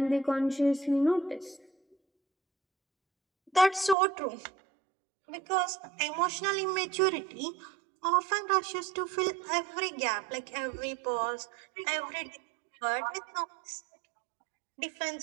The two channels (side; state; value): left; drops out; at 4.0 s